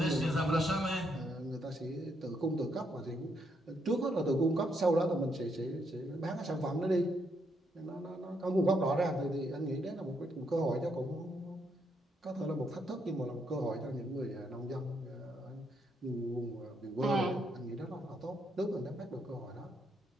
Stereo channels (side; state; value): both; normal; correlation 0.76